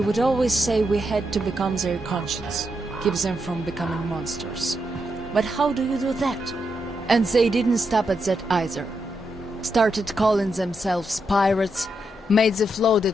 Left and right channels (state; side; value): normal; both; correlation 0.83